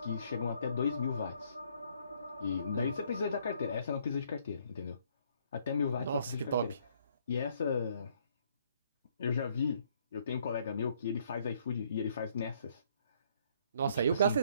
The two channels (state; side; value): inverted; both; correlation -0.66